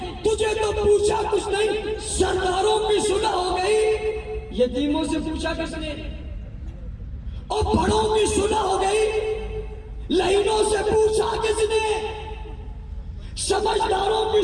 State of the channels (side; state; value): both; identical; correlation 1.00